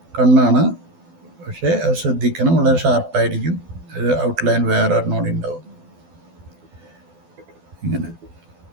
കണ്ണാണ്, പക്ഷേ അത് ശ്രദ്ധിക്കണം, വളരെ ഷാർപ്പായിരിക്കും. ഒരു ഔട്ട്ലൈൻ വേറെ ഒരെണ്ണോടി ഉണ്ടാവും ഇങ്ങനെ.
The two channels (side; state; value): left; late; 12 ms